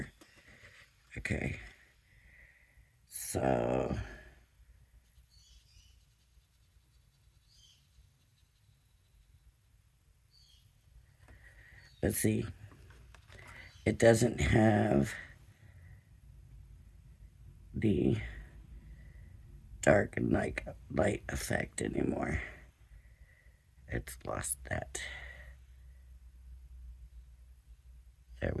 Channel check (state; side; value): identical; both; correlation 1.00